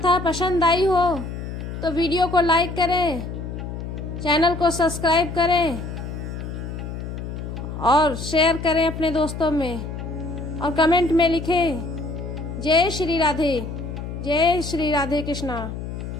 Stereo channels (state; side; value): noise; left; hum, 7 dB below the sound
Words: पसंद आई हो तो वीडियो को लाइक करें, चैनल को सब्सक्राइब करें और शेयर करें अपने दोस्तों में, और कमेंट में लिखें जय श्री राधे, जय श्री राधे कृष्णा।